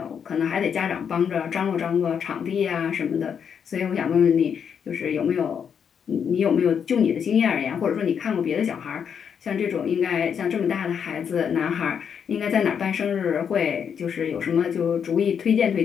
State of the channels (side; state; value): right; quieter; 7.5 dB